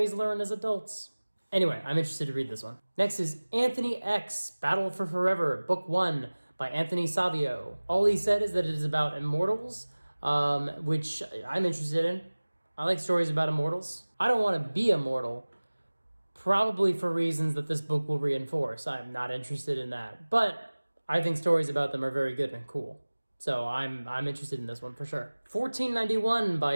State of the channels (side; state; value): both; inverted; correlation -1.00